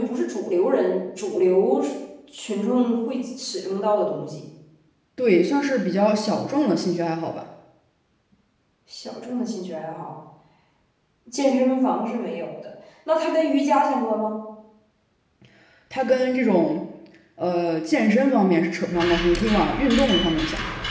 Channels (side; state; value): both; identical; correlation 1.00